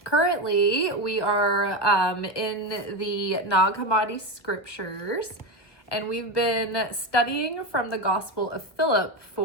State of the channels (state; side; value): late; right; 1.5 ms